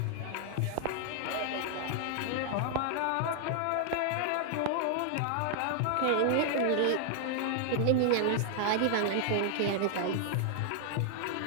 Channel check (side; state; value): both; different; correlation 0.00